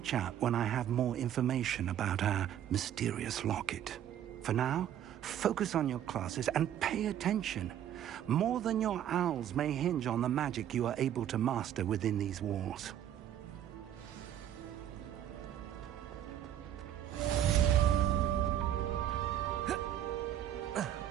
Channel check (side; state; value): left; quieter; 10.7 dB